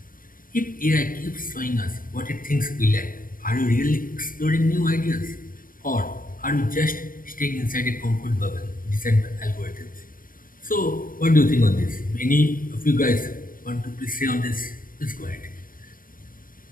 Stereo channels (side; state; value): right; late; 0.40 ms